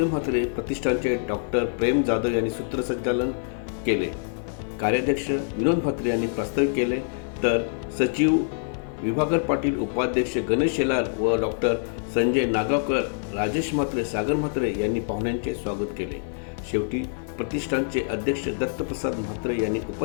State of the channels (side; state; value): right; silent; digital silence